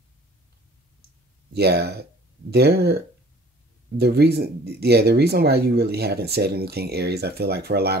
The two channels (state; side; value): normal; both; correlation 0.51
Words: Yeah, the reason why you really haven't said anything, Aries, I feel like for a